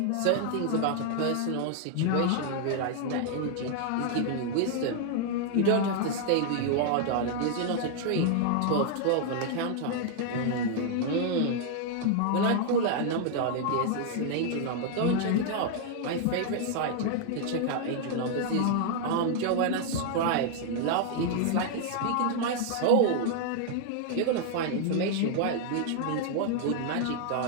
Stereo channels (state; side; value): different; both; correlation 0.00